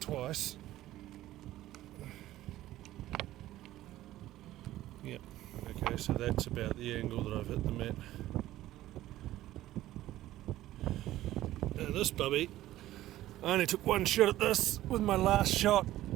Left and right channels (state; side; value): quieter; left; 14.8 dB